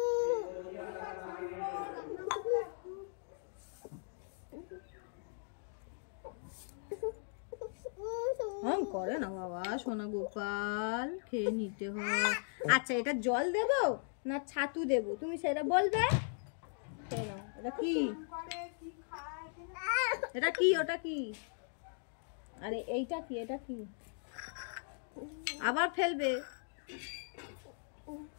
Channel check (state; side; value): silent; right; digital silence